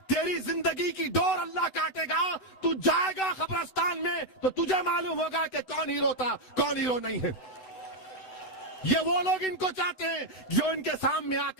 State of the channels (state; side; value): late; right; 12 ms